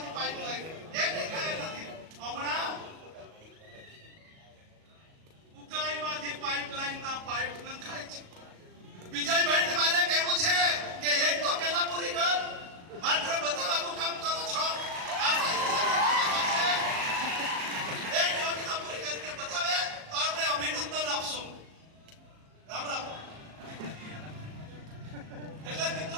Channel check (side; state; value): left; late; 37 ms